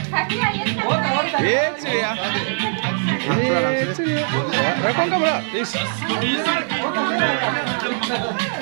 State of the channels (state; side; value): silent; left; digital silence